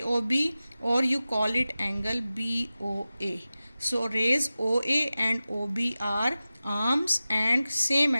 or you call it angle BOA. So, rays OA and OB are arms and same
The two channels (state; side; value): inverted; both; correlation -0.95